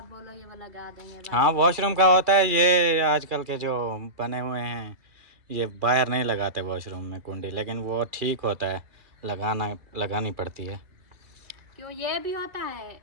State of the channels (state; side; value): late; left; 2.4 ms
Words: बोलोगे वो लगा देंगे बस। हाँ वॉशरूम का होता है ये, आजकल के जो बने हुए हैं ये बाहर नहीं लगाते वॉशरूम में कुंडी, लेकिन वो ठीक होता है, लगानी पड़ती है। क्यों ये भी होता है,